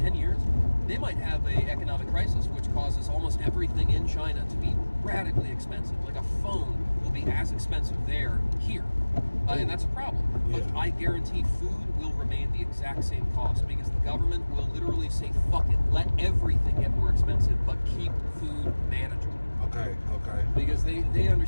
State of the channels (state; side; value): inverted; both; correlation -1.00